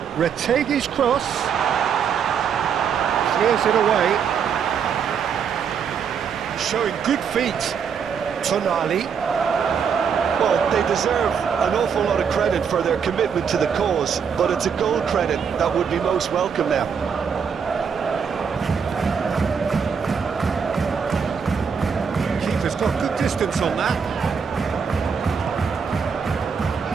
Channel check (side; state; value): left; quieter; 6.8 dB